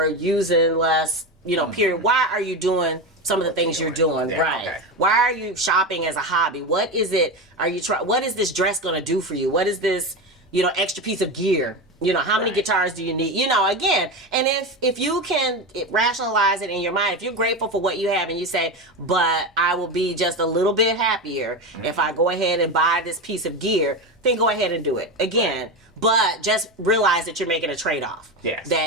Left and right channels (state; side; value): normal; both; correlation 0.19